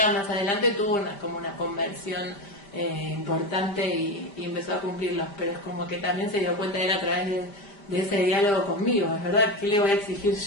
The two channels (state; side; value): late; right; 5.0 ms